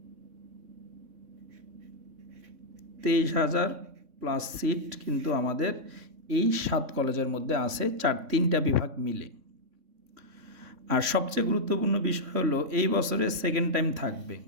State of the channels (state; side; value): late; left; 3.6 ms